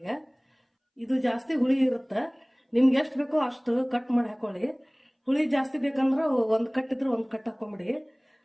ಇದು ಜಾಸ್ತಿ ಹುಳಿ ಇರುತ್ತೆ. ನಿಮ್ಗೆ ಎಷ್ಟು ಬೇಕೋ ಅಷ್ಟು ಕಟ್ ಮಾಡಿ ಹಾಕೊಳ್ಳಿ. ಹುಳಿ ಜಾಸ್ತಿ ಬೇಕಂದ್ರೆ ಒಂದು ಕಟ್ ಇದ್ರೆ ಒಂದು ಕಟ್ ಹಾಕೊಂಬಿಡಿ.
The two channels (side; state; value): both; identical; correlation 1.00